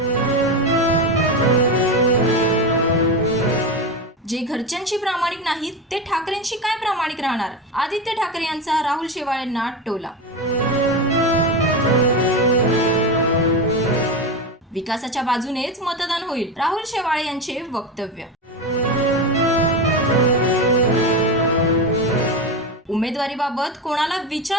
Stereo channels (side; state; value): both; normal; correlation 0.18